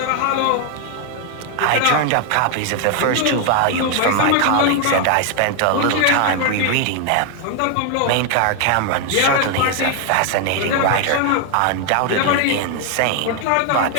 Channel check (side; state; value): both; different; correlation 0.00